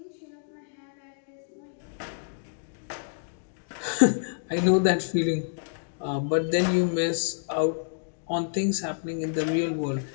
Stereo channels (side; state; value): right; silent; digital silence